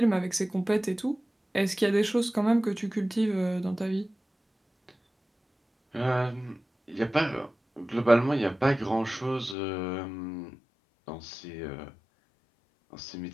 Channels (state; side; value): drops out; right; at 9.6 s